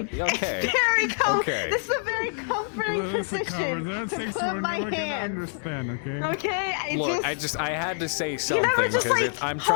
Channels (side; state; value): right; silent; digital silence